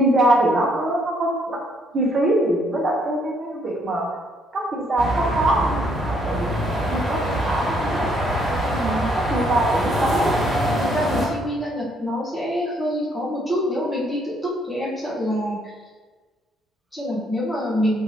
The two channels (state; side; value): normal; both; correlation 0.69